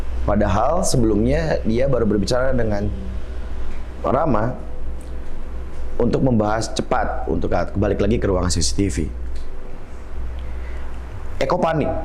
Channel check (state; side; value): identical; both; correlation 1.00